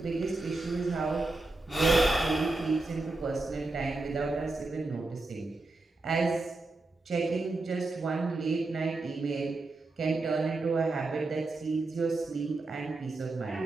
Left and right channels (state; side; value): quieter; left; 3.2 dB